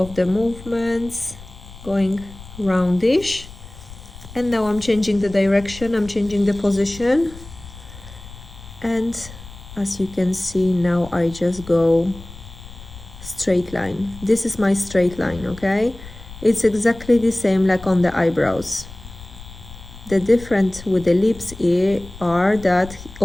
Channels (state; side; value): noise; left; rumble, 17 dB below the sound